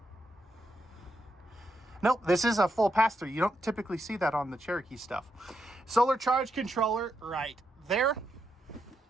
Nope, this is a full pass-through. You don't typically see that on the Cherokee stuff. Solar charge controller right there.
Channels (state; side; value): normal; both; correlation 0.82